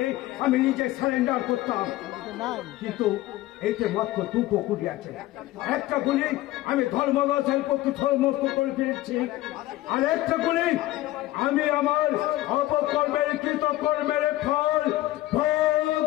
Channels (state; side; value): quieter; right; 16.4 dB